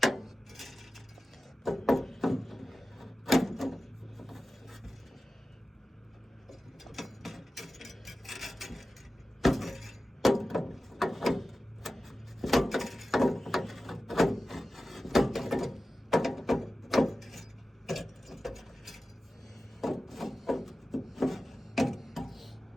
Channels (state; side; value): normal; both; correlation 0.94